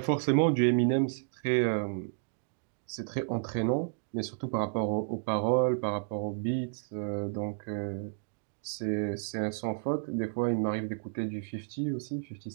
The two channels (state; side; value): silent; left; digital silence